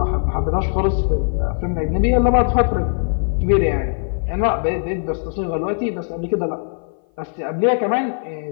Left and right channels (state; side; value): silent; right; 57 dB below the other